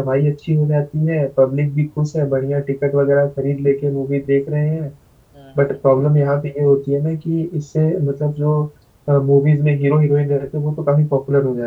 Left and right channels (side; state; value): both; identical; correlation 1.00